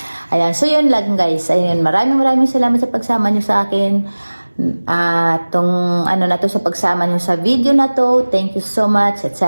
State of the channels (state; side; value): inverted; both; correlation -1.00